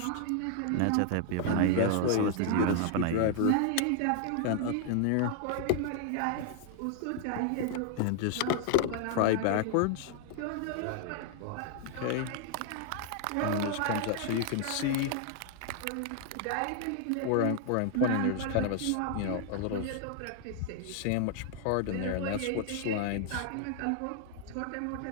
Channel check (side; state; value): both; different; correlation 0.00